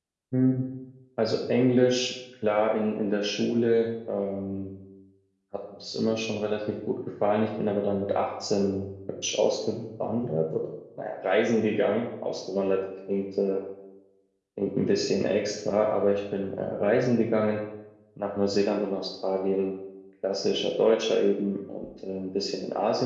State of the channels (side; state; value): both; identical; correlation 1.00